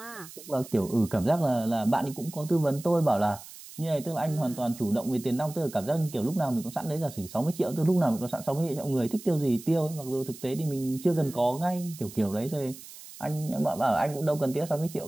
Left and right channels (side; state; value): right; noise; hiss, 16 dB below the sound